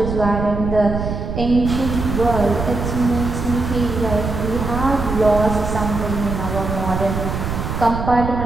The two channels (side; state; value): right; noise; rumble, 4 dB below the sound